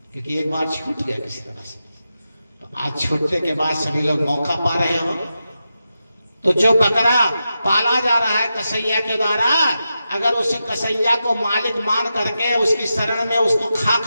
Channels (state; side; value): inverted; both; correlation -0.89